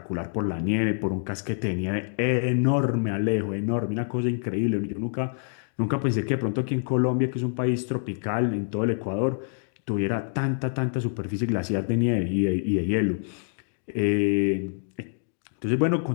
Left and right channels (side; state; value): right; silent; digital silence